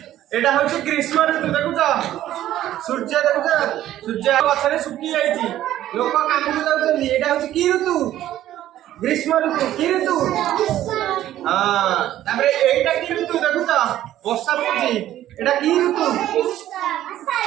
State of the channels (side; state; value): left; quieter; 13.0 dB